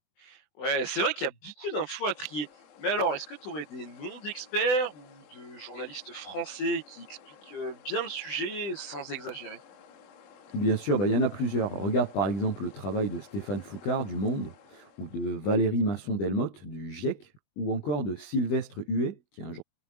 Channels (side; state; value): right; late; 21 ms